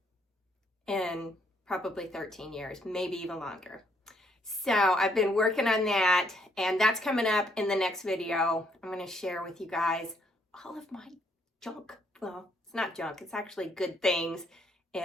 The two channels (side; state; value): both; normal; correlation 0.70